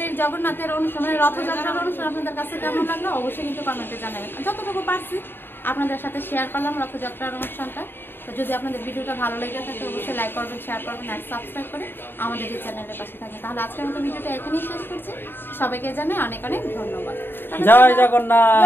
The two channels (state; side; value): late; right; 0.10 ms